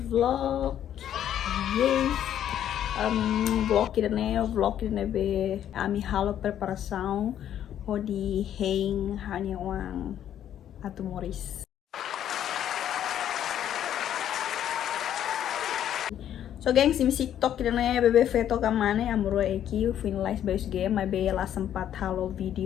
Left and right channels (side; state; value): right; quieter; 10.5 dB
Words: vlog. Yes. Vlog idane be ami halo preparação hodi hein hanya wang atu Moris. So gengs, imi TikTok idane bebe feto kamane amuro eki finalize base game my be la sempat halo